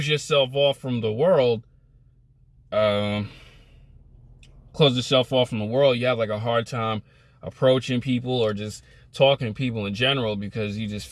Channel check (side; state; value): both; identical; correlation 1.00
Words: yourself off from the world, you have like a hard time approaching people or just talking to people in general, because you just